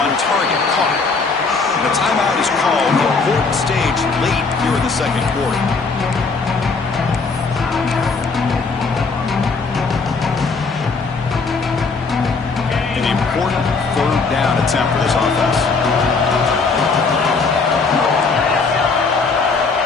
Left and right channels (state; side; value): quieter; right; 4.4 dB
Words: target, caught. And the timeout is called. Important stage late here in the 2nd quarter. An important 3rd down attempt for this offense.